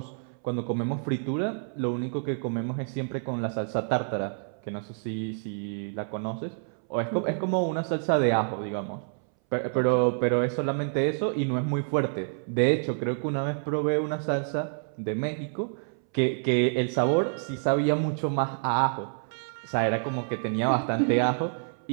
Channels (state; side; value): silent; left; 59 dB below the other